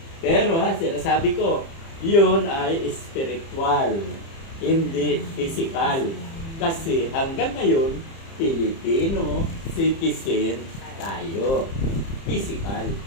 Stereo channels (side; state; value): right; late; 30 ms